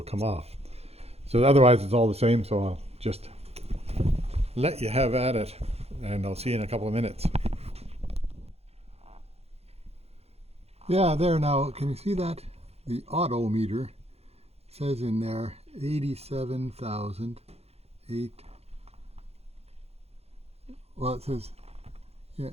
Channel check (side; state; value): left; late; 0.30 ms